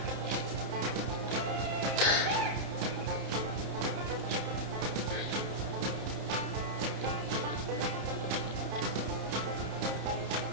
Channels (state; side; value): late; left; 30 ms